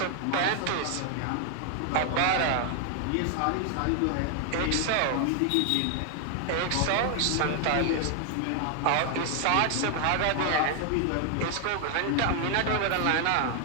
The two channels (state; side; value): different; both; correlation 0.00